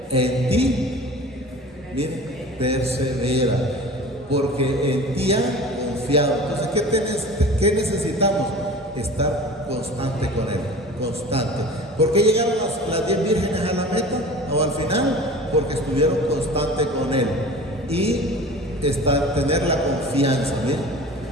en ti, mire, persevera, porque en ti ha confiado. Entonces, ¿qué necesitamos? Estar constante con Él, constante. ¿Por qué llegaron las 10 vírgenes a la meta o al final? Porque estuvieron constantes con Él y tener la confianza, ¿bien?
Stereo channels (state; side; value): normal; both; correlation 0.39